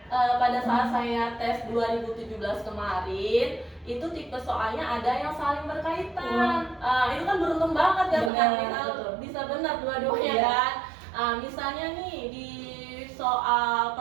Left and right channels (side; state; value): left; drops out; at 8.3 s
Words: pada saat saya tes 2017 kemarin itu tipe soalnya ada yang saling berkaitan. Itu kan beruntung banget ya kita bisa benar dua-duanya kan. Misalnya nih di soal